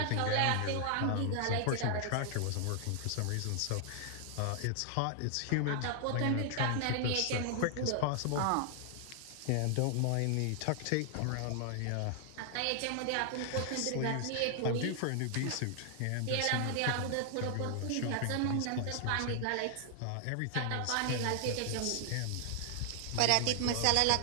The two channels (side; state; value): both; different; correlation 0.00